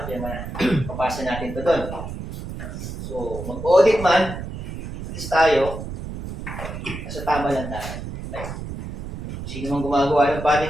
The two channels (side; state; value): right; noise; rumble, 8 dB below the sound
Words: na. Papasa natin ito doon. So mag-audit man, at least tayo, nasa tama lang tayo. Sino mang gumagawa ng